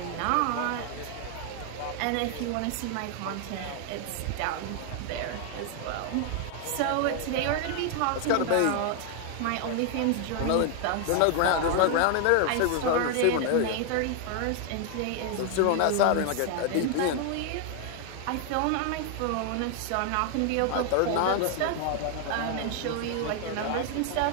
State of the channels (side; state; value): both; different; correlation 0.00